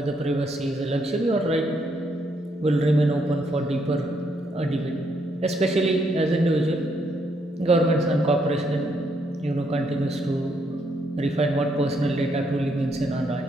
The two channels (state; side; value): normal; both; correlation 0.75